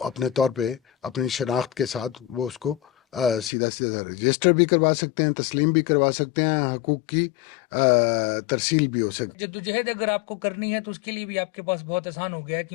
اپنے طور پہ اپنی شناخت کے ساتھ وہ اس کو سیدھا سیدھا رجسٹر بھی کروا سکتے ہیں، تسلیم بھی کروا سکتے ہیں، حقوق کی ترسیل بھی ہو سکتی ہے۔ جدوجہد اگر آپ کو کرنی ہے تو اس کے لیے بھی آپ کے پاس بہت آسان ہو گیا ہے،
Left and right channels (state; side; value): drops out; right; at 3.5 s